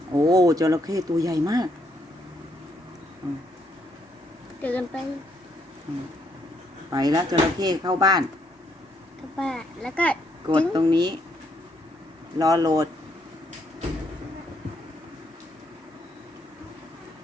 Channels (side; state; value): both; normal; correlation 0.73